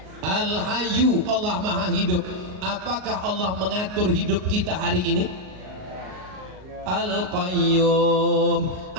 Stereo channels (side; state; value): left; late; 38 ms